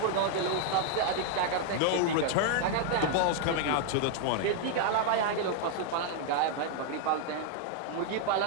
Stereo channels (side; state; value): both; different; correlation 0.00